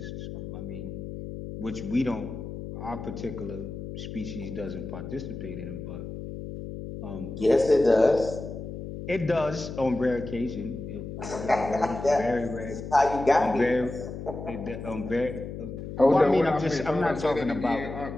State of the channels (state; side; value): noise; left; hum, 8 dB below the sound